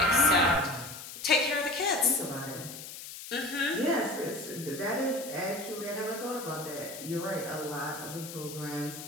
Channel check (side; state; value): left; noise; hiss, 12 dB below the sound